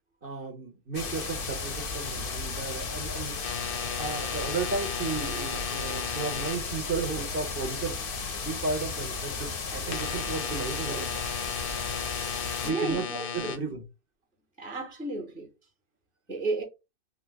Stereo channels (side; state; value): right; late; 2.6 ms